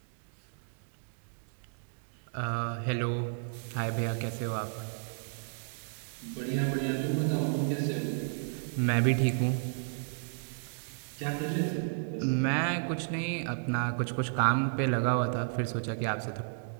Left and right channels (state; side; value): silent; left; digital silence